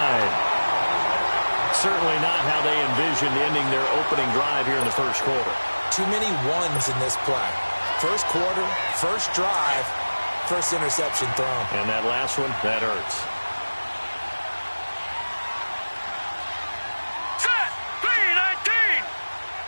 Certainly not how they envisioned ending their opening drive here in the first quarter. Too many ones in this play. First quarter, first drive, first interception thrown. And that last one, that hurts.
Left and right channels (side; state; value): both; inverted; correlation -1.00